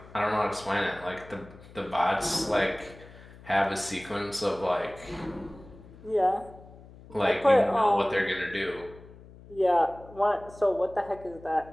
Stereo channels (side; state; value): left; noise; hum, 20 dB below the sound